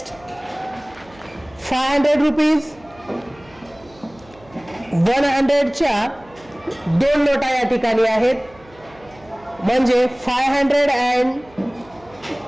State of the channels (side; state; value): right; noise; hum, 26 dB below the sound